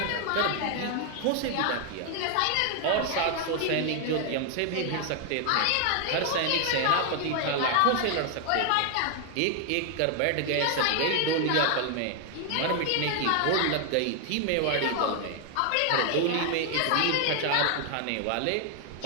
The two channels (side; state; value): both; different; correlation 0.00